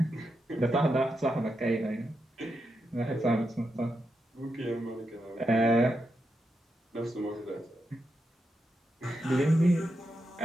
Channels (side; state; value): both; normal; correlation 0.85